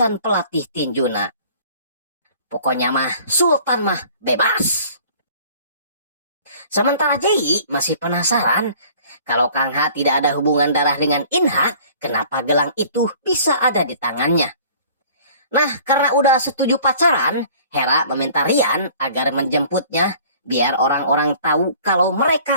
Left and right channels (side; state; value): both; inverted; correlation -0.50